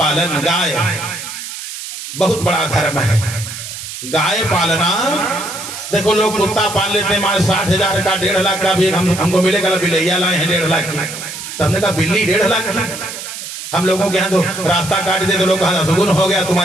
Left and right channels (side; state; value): right; noise; hiss, 9 dB below the sound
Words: गाय बहुत बड़ा धर्म है। गाय पालना, देखो लोग कुत्ता पाल लेते हैं, मारे 60,000 का 1.5 लाख का भी हमको मिलेगा, बिलैया लाए हैं 1.5 लाख की। तो हमने कहा बिल्ली 1.5 लाख की? हम लोगों के यहाँ तो रास्ता काट दे तो लोग कहा सुगुन हो गया,